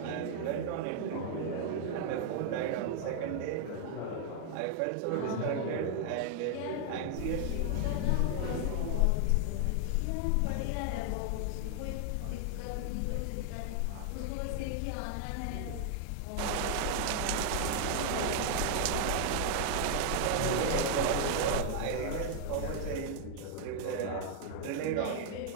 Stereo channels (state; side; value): different; both; correlation 0.00